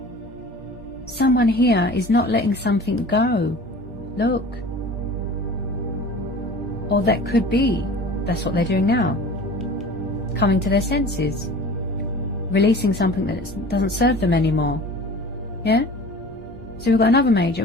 Someone here is not letting something go. Look. Or that could be. That's what they're doing now. Coming to their senses. Releasing something that doesn't serve them anymore. Yeah? So we've got another major.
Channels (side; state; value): both; normal; correlation 0.41